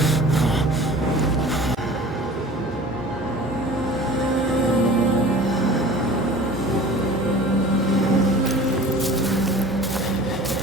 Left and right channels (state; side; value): normal; both; correlation 0.42